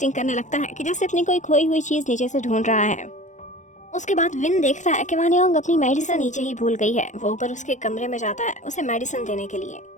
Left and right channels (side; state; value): right; late; 0.35 ms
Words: करने लगता है कि जैसे अपनी कोई खोई हुई चीज नीचे से ढूंढ रहा है। उसके बाद विन देखता है कि वानियोंग अपनी मेडिसिन नीचे ही भूल गई है। वो ऊपर उसके कमरे में जाता है उसे मेडिसिन देने के लिए।